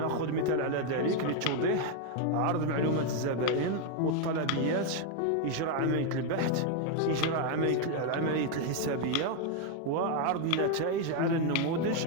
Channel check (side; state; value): both; different; correlation 0.01